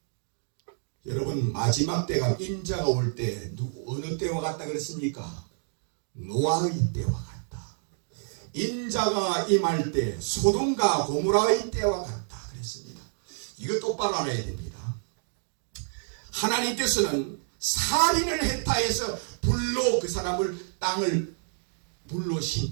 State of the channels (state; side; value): silent; left; digital silence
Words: 여러분, 마지막 때가 인자가 올 때 어느 때와 같다 그랬습니까? 노아의 때와 같다. 인자가 임할 때 소돔과 고모라의 때와 같다 그랬습니다. 이거 똑바로 알아야 됩니다. 하나님께서는 살인을 했다 해서 불로 그 사람을 땅을 불로